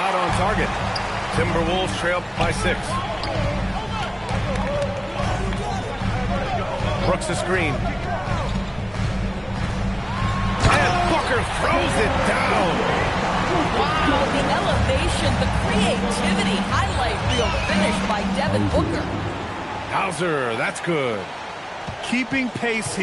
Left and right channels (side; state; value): both; identical; correlation 1.00